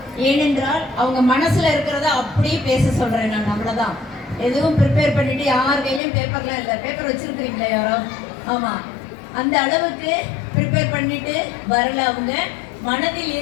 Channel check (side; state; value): right; drops out; at 6.0 s